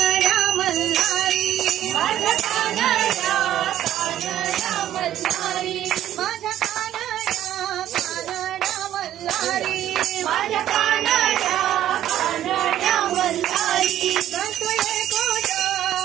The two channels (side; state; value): left; quieter; 12.1 dB